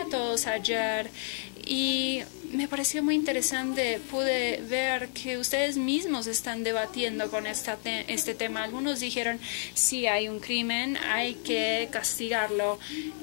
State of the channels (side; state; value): right; silent; digital silence